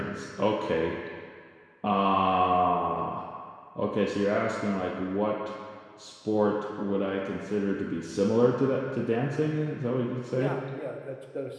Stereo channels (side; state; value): both; identical; correlation 1.00